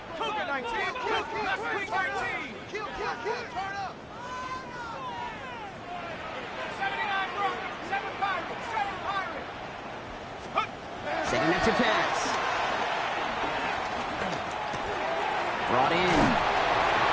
Cougar 19. Cougar 19. Kill, turn up. 79 Broncos, 7 Pirates, 7 Pirates. Setting up to pass. Brought in.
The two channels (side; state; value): both; identical; correlation 1.00